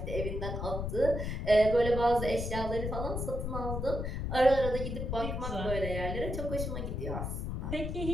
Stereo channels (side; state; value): left; noise; rumble, 3 dB below the sound